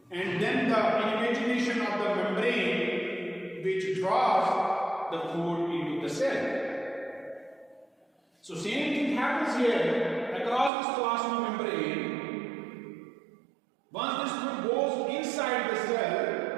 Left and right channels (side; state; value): left; drops out; at 10.7 s